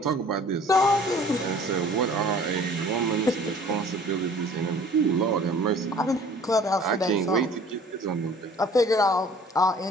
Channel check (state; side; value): normal; both; correlation 0.51